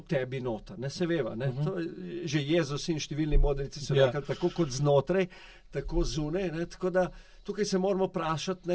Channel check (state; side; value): identical; both; correlation 1.00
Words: tebi noter. Se veva, to že Jezus in številni modrici so rekli, tako kot znotraj, tako zunaj, tako da tukaj se moramo